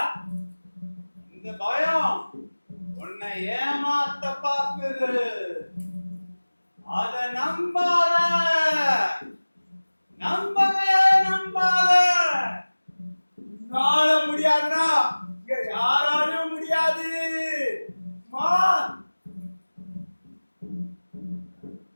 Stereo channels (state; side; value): inverted; both; correlation -1.00